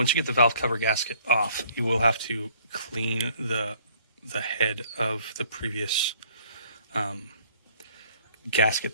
you get the valve cover gasket off, you will have to clean the head of the previous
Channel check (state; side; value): inverted; both; correlation -0.59